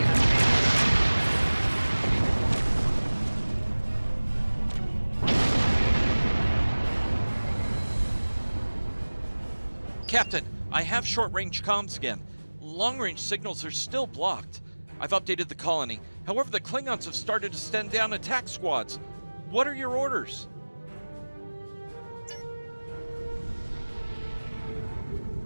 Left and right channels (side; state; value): both; inverted; correlation -1.00